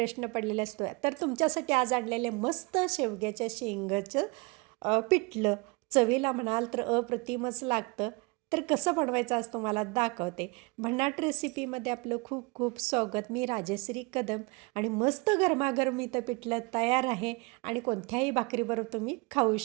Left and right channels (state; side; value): quieter; left; 27.7 dB